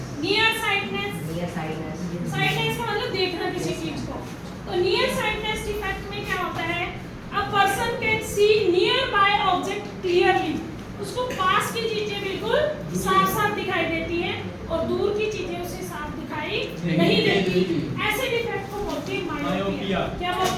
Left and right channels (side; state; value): both; identical; correlation 1.00